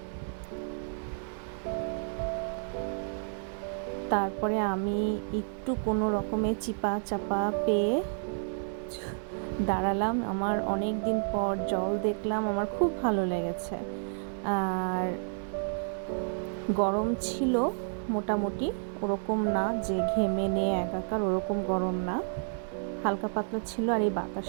তারপরে আমি একটু কোনো রকমে চিপা চাপা পেয়ে দাঁড়ালাম। আমার অনেক দিন পর জল দেখলাম, আমার খুব ভালো লেগেছে। আর গরম ছিল মোটামুটি, ওরকম না যে ঘেমে নিয়ে একাকার, ওরকম গরম না, হালকা পাতলা ছিল। আর এই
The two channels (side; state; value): left; silent; digital silence